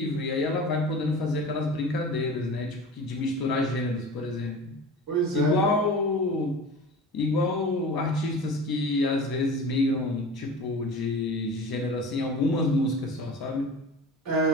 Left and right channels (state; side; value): normal; both; correlation 0.36